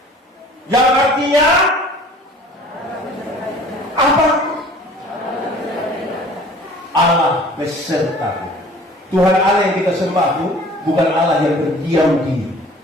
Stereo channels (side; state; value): both; normal; correlation 0.49